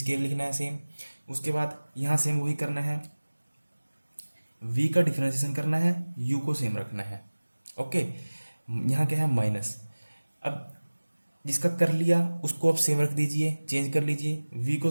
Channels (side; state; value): both; inverted; correlation -1.00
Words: लिखना है सेम। उसके बाद यहाँ सेम वही करना है, v का डिफरेंशिएशन करना है, u को सेम रखना है, ओके। यहाँ क्या है, माइनस। अब जिसका कर लिया उसको आप सेम रख दीजिए, चेंज कर लीजिए, v को